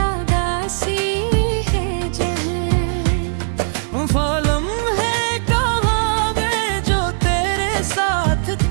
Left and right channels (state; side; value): silent; left; digital silence